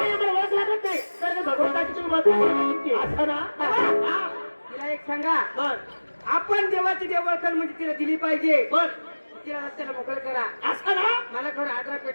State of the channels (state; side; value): inverted; both; correlation -1.00